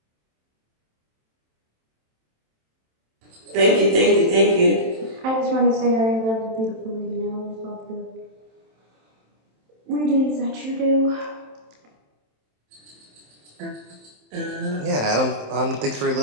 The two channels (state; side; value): late; left; 27 ms